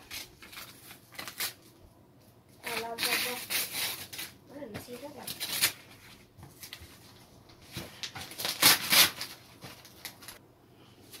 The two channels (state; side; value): identical; both; correlation 1.00